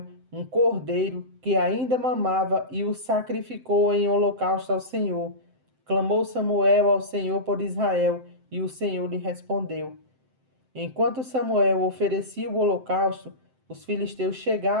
um cordeiro que ainda mamava e o sacrificou em holocausto ao Senhor. Clamou Samuel ao Senhor por Israel, e o Senhor lhe respondeu. Enquanto Samuel oferecia o holocausto, os filisteus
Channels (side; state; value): left; late; 7.7 ms